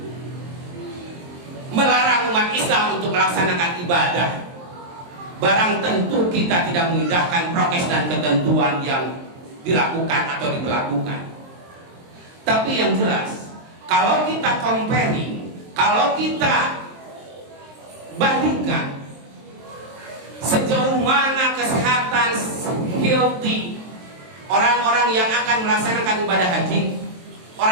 melarang umat Islam untuk melaksanakan ibadah. Barang tentu kita tidak mengindahkan prokes dan ketentuan yang dilakukan atau diberlakukan. Tapi yang jelas, kalau kita comparing, kalau kita bandingkan sejauh mana kesehatan healthy orang-orang yang akan melaksanakan ibadah haji,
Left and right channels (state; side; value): late; left; 23 ms